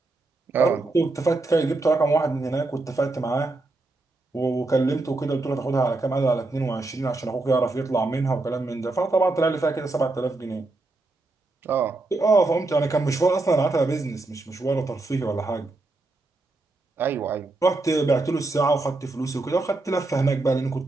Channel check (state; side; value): quieter; left; 3.1 dB